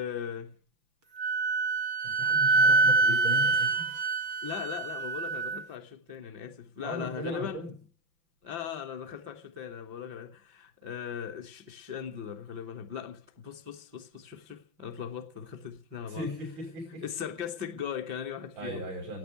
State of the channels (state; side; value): late; left; 5.9 ms